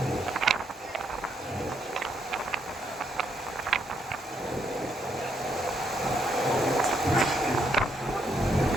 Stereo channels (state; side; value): normal; both; correlation 0.75